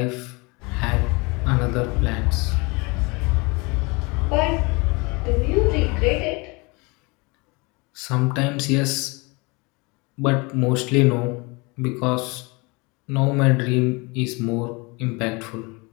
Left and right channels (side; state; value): right; quieter; 27.5 dB